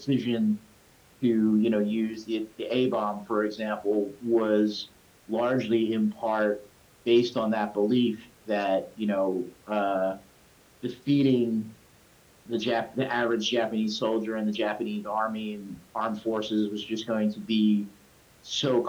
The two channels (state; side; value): identical; both; correlation 1.00